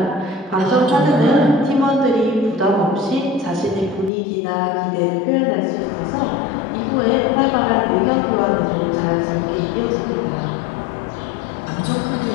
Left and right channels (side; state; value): right; drops out; at 4.1 s